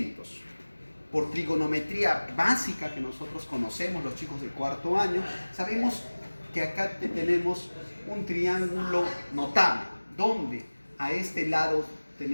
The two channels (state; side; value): inverted; both; correlation -1.00